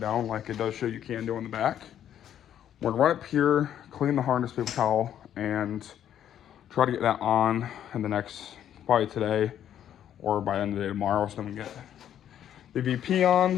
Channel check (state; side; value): quieter; right; 10.3 dB